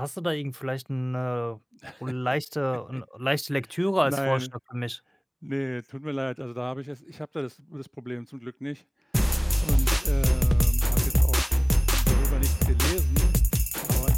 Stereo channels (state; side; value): identical; both; correlation 1.00